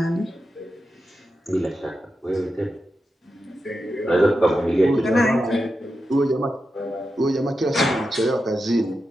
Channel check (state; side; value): normal; both; correlation 0.89